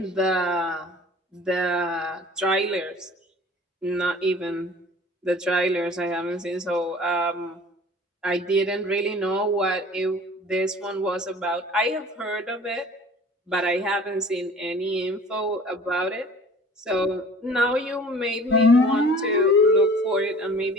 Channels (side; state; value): both; normal; correlation 0.47